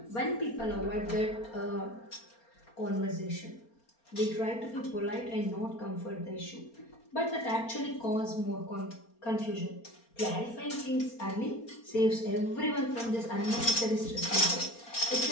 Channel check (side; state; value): right; late; 4.3 ms